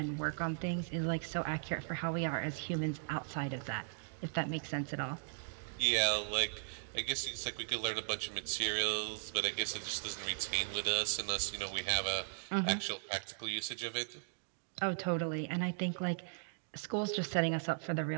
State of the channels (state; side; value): silent; left; digital silence